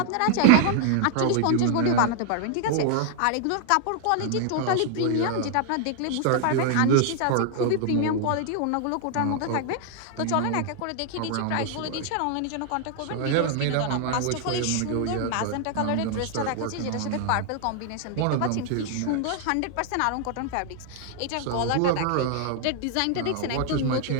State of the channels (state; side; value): different; both; correlation 0.00